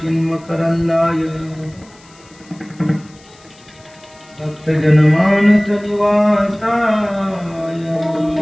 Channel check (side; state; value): left; noise; hiss, 27 dB below the sound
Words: चिन्मकरंदाय भक्त जनमानस निवासाय